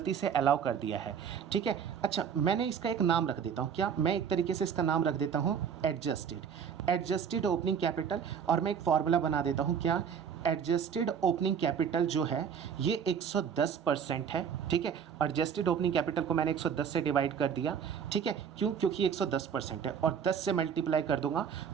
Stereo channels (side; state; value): left; quieter; 7.5 dB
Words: से अलाउ कर दिया है। ठीक है, अच्छा मैंने इसका एक नाम रख देता हूँ, क्या मैं एक तरीके से इसका नाम रख देता हूँ एडजस्टेड ओपनिंग कैपिटल, और मैं एक फॉर्मूला बना देता हूँ क्या, एडजस्टेड ओपनिंग कैपिटल जो है ये 110% है। ठीक है, एडजस्टेड ओपनिंग कैपिटल को मैंने 110 से डिवाइड कर दिया। ठीक है, क्यों, क्योंकि 110% है, और 10 से मल्टीप्लाई कर दूंगा